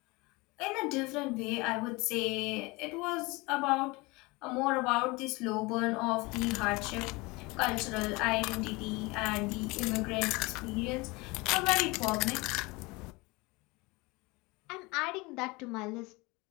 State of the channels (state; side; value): quieter; right; 24.6 dB